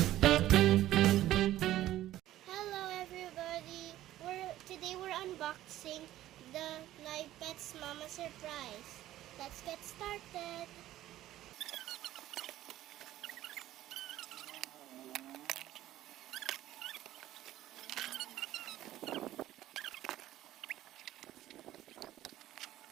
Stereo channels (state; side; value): quieter; left; 14.1 dB